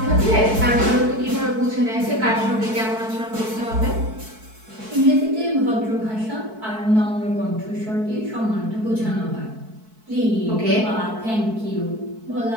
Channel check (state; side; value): late; left; 4.6 ms